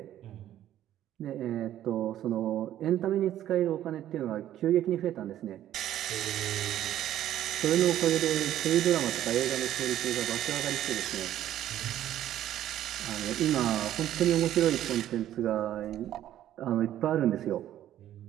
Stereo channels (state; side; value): quieter; left; 12.2 dB